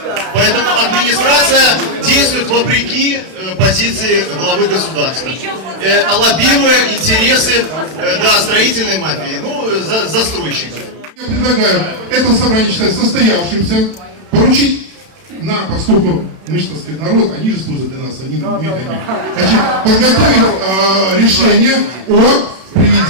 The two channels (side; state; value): left; late; 32 ms